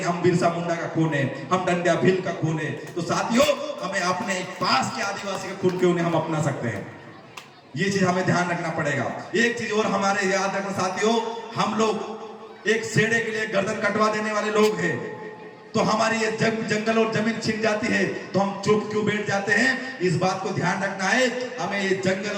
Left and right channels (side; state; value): both; identical; correlation 1.00